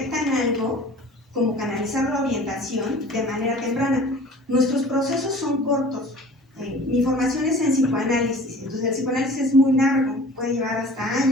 algo, como canalizar la orientación de manera temprana. Nuestros procesos son cortos. Mi formación es en psicoanálisis, entonces el psicoanálisis es muy largo, puede llevar hasta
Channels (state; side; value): normal; both; correlation 0.45